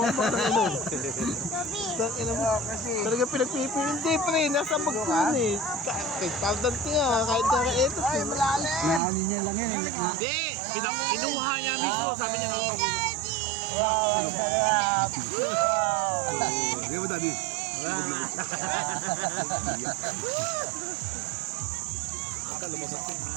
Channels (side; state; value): left; drops out; at 9.0 s